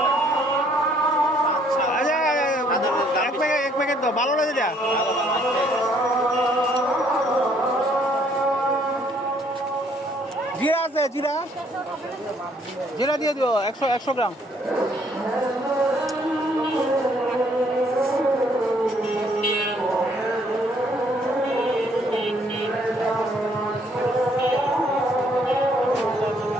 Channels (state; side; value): normal; both; correlation 0.65